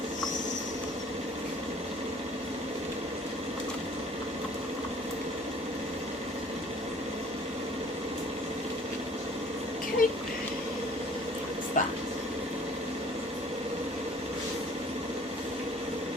Okay, that's that.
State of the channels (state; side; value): normal; both; correlation 0.52